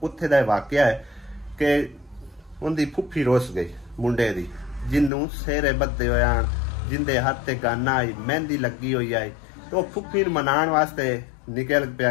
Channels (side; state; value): right; drops out; at 5.1 s